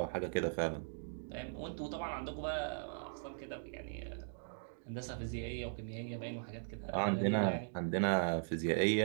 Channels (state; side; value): silent; left; digital silence